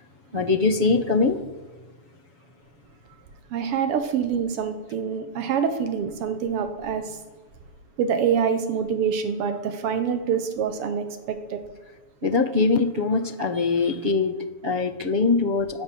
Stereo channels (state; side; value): late; left; 7.1 ms